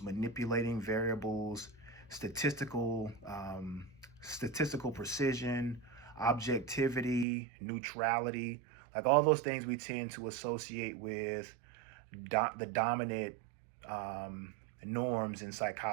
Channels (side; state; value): left; drops out; at 7.2 s